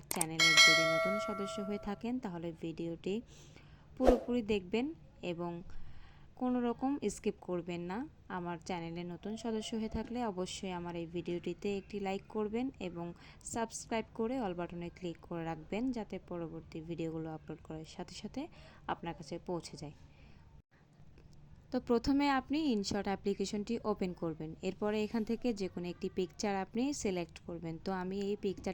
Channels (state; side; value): identical; both; correlation 1.00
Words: চ্যানেলের যদি নতুন সদস্য হয়ে থাকেন তাহলে ভিডিওটি পুরোপুরি দেখবেন এবং কোনো রকম স্কিপ করবেন না। আমার চ্যানেলে নতুন সদস্য হয়ে থাকলে অবশ্যই আমার এই ভিডিওটিতে একটি লাইক করবেন এবং সাবস্ক্রাইব করে অল বাটনে ক্লিক করে রাখবেন, যাতে পরবর্তী ভিডিওগুলো আপলোড করার সাথে সাথে আপনার কাছে পৌঁছে যায়। তো প্রথমে আপনি ইনশট অ্যাপ্লিকেশনটি ওপেন করবেন। এরপরে এখান থেকে যে কোনো একটি পিকচার আপনি সিলেক্ট করবেন। তো আমি এই